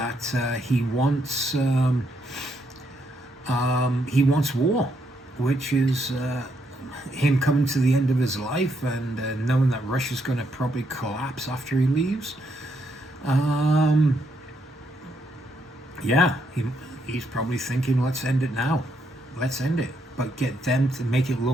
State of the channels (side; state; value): both; normal; correlation 0.76